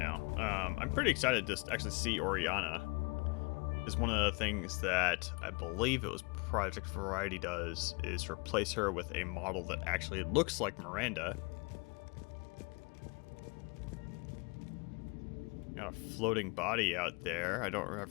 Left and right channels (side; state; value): right; quieter; 30.7 dB